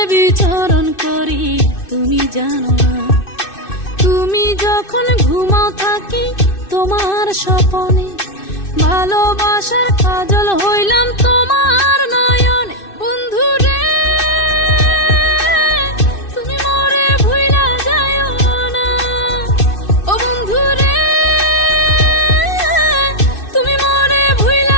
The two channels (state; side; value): late; right; 2.6 ms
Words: বিচরণ করি তুমি জানো না। তুমি যখন ঘুমাও থাকি তোমার স্বপনে, ভালোবাসার কাজল হইলাম তোমার নয়নে। বন্ধু রে তুমি মরে ভুইলা যাইও না, ও বন্ধু রে তুমি মরে